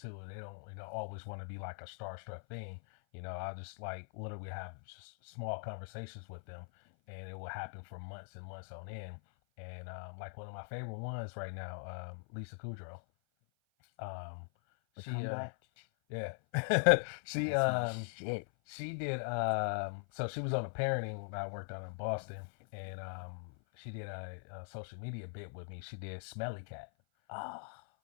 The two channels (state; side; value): silent; right; 50 dB below the other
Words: and they don't always want to be like a starstruck thing. I just like literally have just small conversations with them, and it will happen for months and months on end. And like one of my favorite ones right now, Lisa Kudrow. Um, The she comeback. yeah, she That's my shit. she did so she was on a parenting I worked on in Boston, and she did a social media bit with me. She did Smelly Cat, Oh.